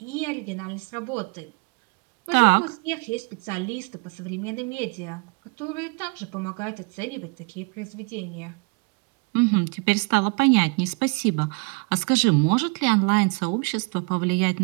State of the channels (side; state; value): left; quieter; 32.8 dB